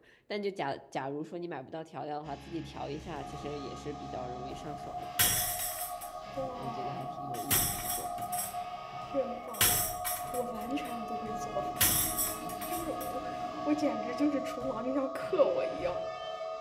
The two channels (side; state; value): both; identical; correlation 1.00